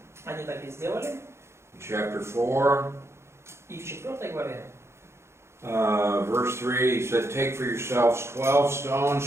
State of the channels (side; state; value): left; late; 0.13 ms